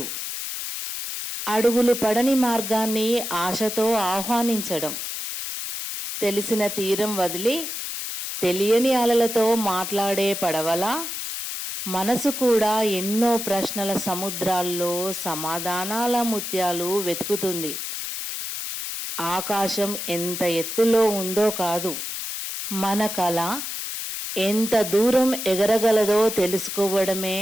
అడుగులు పడని మార్గాన్ని ఆశతో ఆహ్వానించడం. తెలిసిన తీరం వదిలి తెలియని అలలతో మాట్లాడే పడవలా మనసు కూడా ఎన్నో ప్రశ్నల సముద్రాల్లో సమాధానాల ముత్యాలు వెతుకుతుంది. ఆకాశం ఎంత ఎత్తులో ఉందో కాదు, మన కళ ఎంత దూరం ఎగరగలదో తెలుసుకోవడమే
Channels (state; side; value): noise; left; hiss, 5 dB below the sound